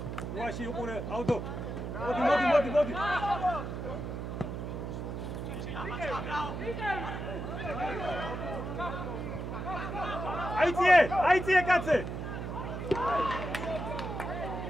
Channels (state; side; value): noise; right; hum, 5 dB below the sound